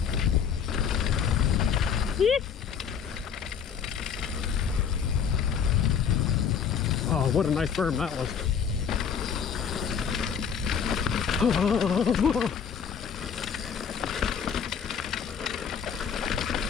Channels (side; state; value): right; quieter; 7.3 dB